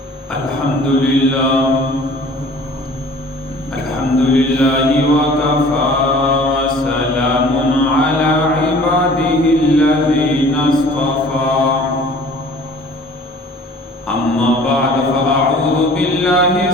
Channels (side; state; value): both; normal; correlation 0.49